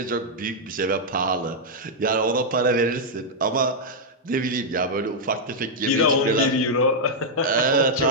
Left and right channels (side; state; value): both; normal; correlation -0.04